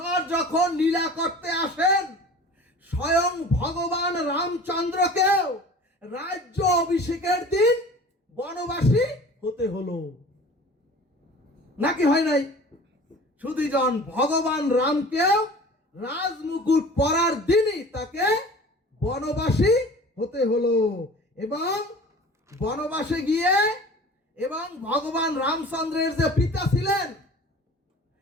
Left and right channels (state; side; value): normal; both; correlation 0.43